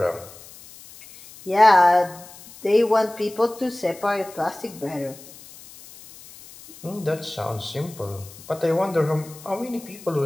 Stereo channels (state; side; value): noise; left; hiss, 19 dB below the sound